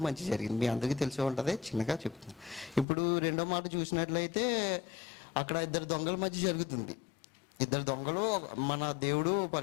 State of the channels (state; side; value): drops out; right; at 2.9 s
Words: మంచి జరిగింది. మీ అందరికీ తెలిసే ఉంటుంది, చిన్నగా చెప్తున్నాను. ఇప్పుడు రెండో మాట చూసినట్లయితే అక్కడ ఇద్దరు దొంగల మధ్య జరుగుతుంది. ఇద్దరు దొంగలు, మన దేవుడు